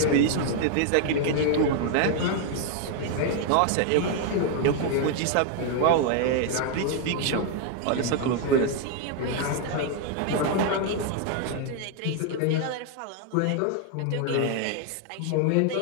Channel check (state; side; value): different; both; correlation 0.00